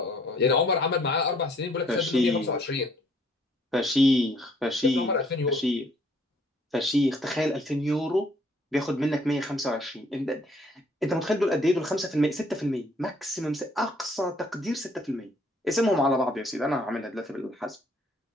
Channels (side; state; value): both; normal; correlation 0.62